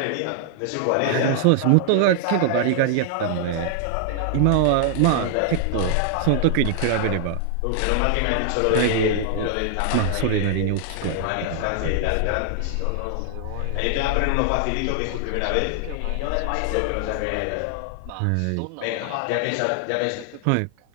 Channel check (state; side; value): different; both; correlation 0.00